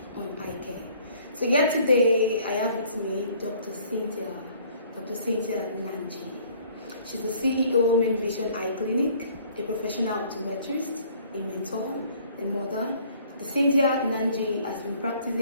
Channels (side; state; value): both; inverted; correlation -0.57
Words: on eye care. So yet today, I have with me Dr. Cynthia Nanji. She's the CEO of Main Vision Eye Clinic, a professional optometrist, a mentor, a mother. Cynthia Nanji has been